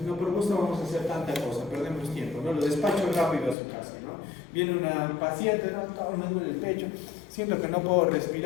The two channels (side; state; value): right; drops out; at 3.6 s